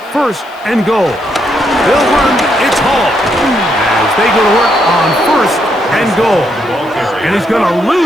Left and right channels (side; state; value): left; noise; hiss, 30 dB below the sound